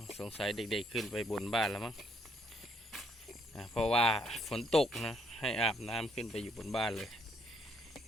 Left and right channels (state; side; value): normal; both; correlation 0.70